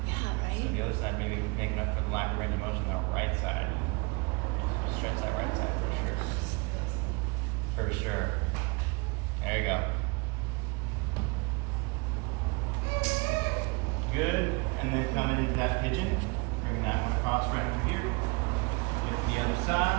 Yeah, right? So the other side maybe making up for the lack of range of motion on the right side. Stretch that right side for sure. For sure. There you go. Good. And then coming into that pigeon, bringing that one across right through here. Get the other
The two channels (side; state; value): left; quieter; 28.3 dB